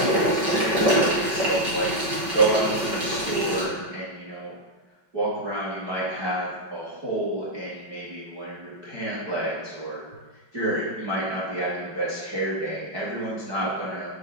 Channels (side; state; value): left; late; 5.3 ms